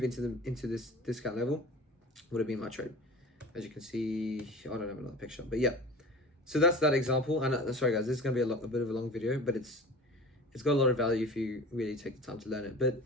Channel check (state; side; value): normal; both; correlation 0.38